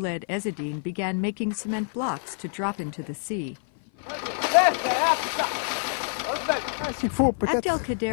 Ezzedine began making cement blocks to drop into the sea.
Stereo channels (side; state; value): right; silent; 56 dB below the other